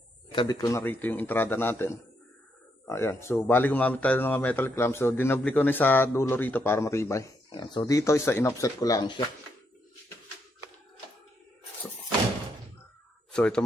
Kabit ko na rito yung entrada natin. Ayan. So, bali gumamit tayo ng mga metal clamp. So, dinabli ko na sa dulo rito para matibay. Ayan. So, dito isa in-offset ko lang siya. So, ito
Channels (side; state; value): both; normal; correlation 0.78